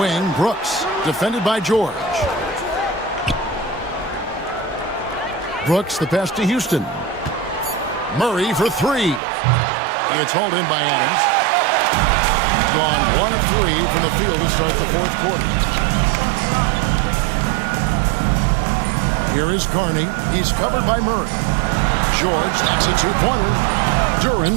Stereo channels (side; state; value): left; drops out; at 9.2 s